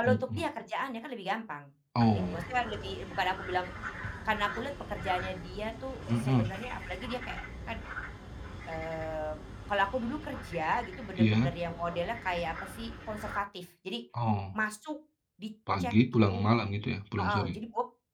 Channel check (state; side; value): identical; both; correlation 1.00